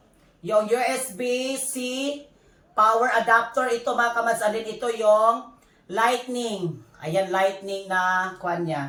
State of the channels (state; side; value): identical; both; correlation 1.00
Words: Yung USB-C power adapter. Ito mga kamas. Alin ito yung lightning. Ayan, lightning na kuan